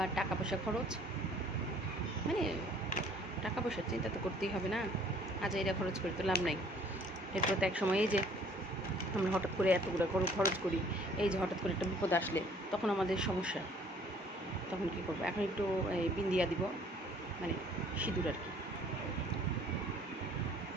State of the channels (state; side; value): normal; both; correlation 0.57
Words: টাকা পয়সা খরচ, মানে টাকা পয়সার চিন্তা তো করতেই হবে না, আজ এটা খরচ করে তো লাভ নাই। এরপর তো এক সময় এই যে আমরা হঠাৎ করে এতগুলো খরচ করি, এই যে হঠাৎ করে একটা বিপদ আসলে তখন আমাদের সমস্যা, তখন কী করবো। এখন একটু এই বিন্দিয়া দিব, মানে সিঁদুর আর কি,